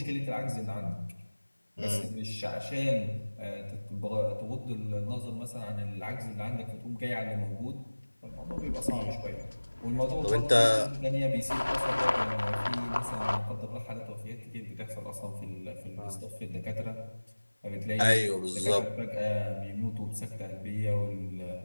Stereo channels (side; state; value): both; inverted; correlation -1.00